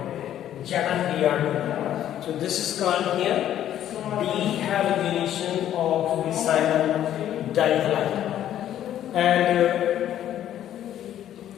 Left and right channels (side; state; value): right; quieter; 11.3 dB